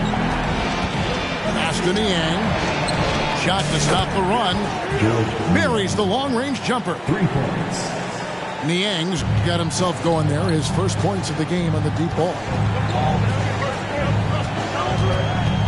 Pass to Niang. Shot to stop the run. Buries the long-range jumper. 3 points. Niang's got himself going there. His first points of the game on the deep ball.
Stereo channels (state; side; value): identical; both; correlation 1.00